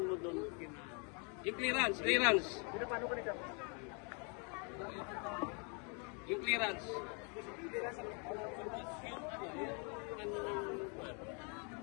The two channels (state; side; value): quieter; right; 36.6 dB